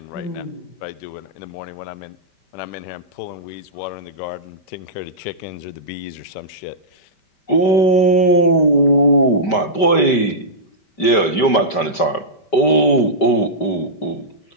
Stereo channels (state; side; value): late; right; 5.1 ms